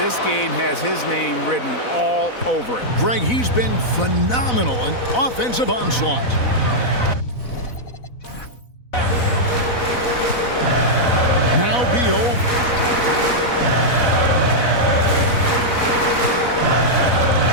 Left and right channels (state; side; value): late; right; 4.0 ms